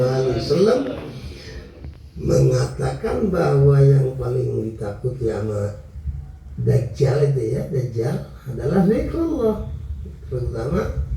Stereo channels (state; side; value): identical; both; correlation 1.00